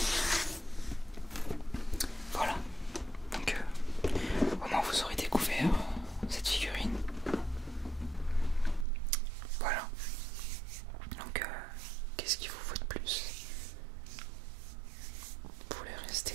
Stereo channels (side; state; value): left; drops out; at 8.8 s